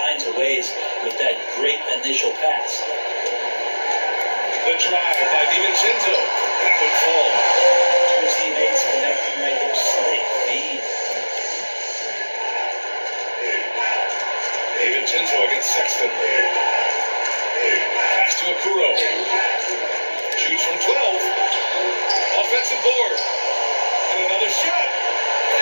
of ways with that great initial pass. The drive by DiVincenzo. That would fall. Two teammates connecting right there. Slick feed. DiVincenzo against Sexton. Pass to Okuro. Shoots from 12. Offensive board. And another shot.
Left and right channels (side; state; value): both; inverted; correlation -1.00